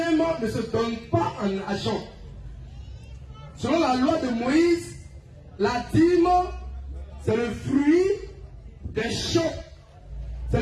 ne se donne pas en argent. Selon la loi de Moïse, la dîme, c'est le fruit des champs. C'est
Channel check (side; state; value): both; identical; correlation 1.00